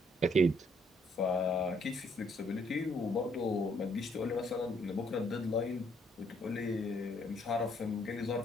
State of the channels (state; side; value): normal; both; correlation 0.68